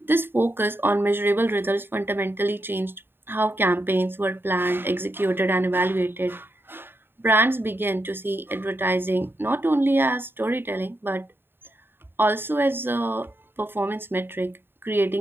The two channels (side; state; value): left; late; 0.10 ms